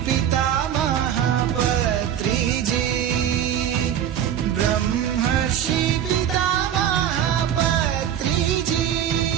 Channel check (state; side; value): quieter; left; 9.8 dB